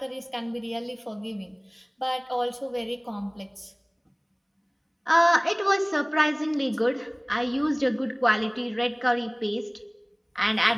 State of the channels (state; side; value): identical; both; correlation 1.00